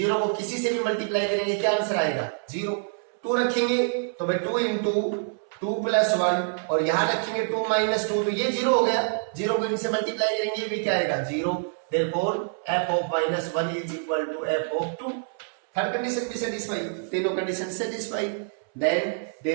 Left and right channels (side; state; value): left; silent; 61 dB below the other